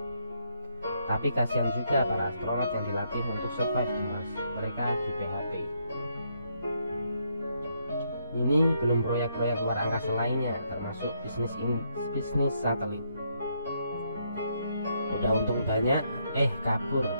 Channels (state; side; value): inverted; both; correlation -0.74